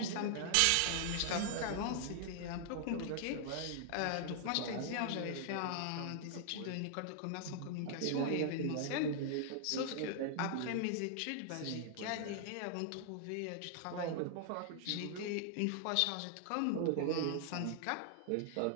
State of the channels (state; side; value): different; both; correlation -0.01